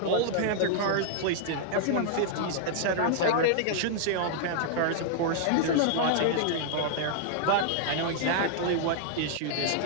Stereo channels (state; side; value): different; both; correlation -0.01